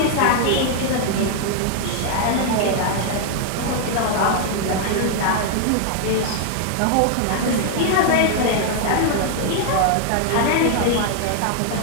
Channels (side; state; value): both; different; correlation 0.00